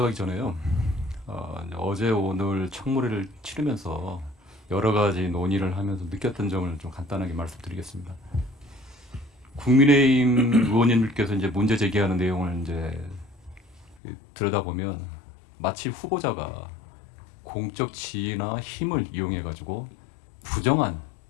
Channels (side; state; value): right; drops out; at 14.0 s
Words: 전에요. 어제 오늘 청문회를 치르면서 여러 가지 논의를 하면서 느꼈던 점을 좀 간단하게 말씀드리겠습니다. 국민의힘 의원님들께서 이제 문제 제기하는 내용을 이제 들여다보면 마치 후보자가 공적 지위나 힘을 이용해 가지고 부정한